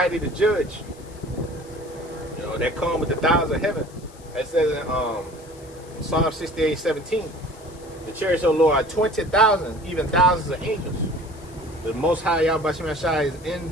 to judge. You know, that come with the thousands of heaven. It says in Psalm 68:17, the chariots of the Lord are 20,000, even thousands of angels. The Most High Yahweh Shai is in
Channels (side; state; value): left; noise; hiss, 24 dB below the sound